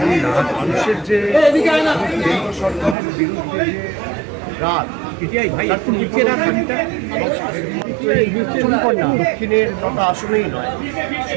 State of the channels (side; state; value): left; drops out; at 3.0 s